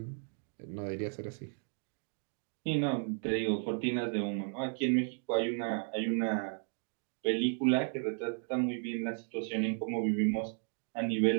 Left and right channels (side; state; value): left; silent; 55 dB below the other